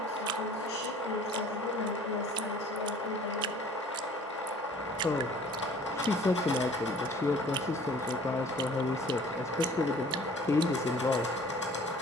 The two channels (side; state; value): both; normal; correlation 0.51